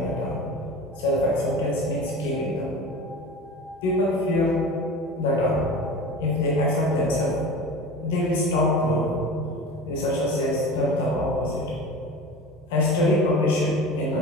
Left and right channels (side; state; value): both; normal; correlation 0.34